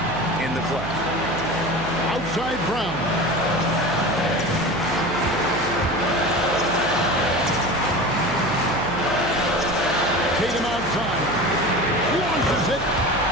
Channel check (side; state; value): right; noise; hum, 10 dB below the sound